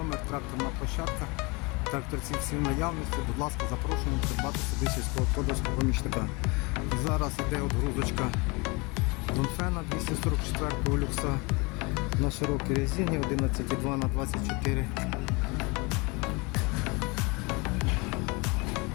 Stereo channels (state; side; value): quieter; right; 27.5 dB